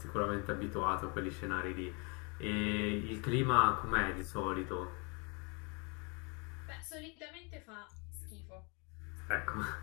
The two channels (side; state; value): right; quieter; 32.1 dB